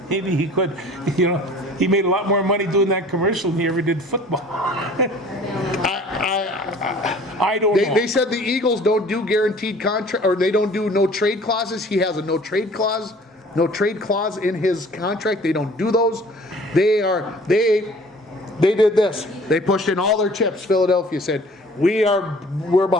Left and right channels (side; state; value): both; normal; correlation 0.50